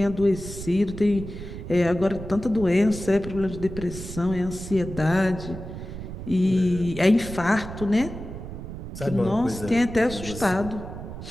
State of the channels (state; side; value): noise; right; rumble, 10 dB below the sound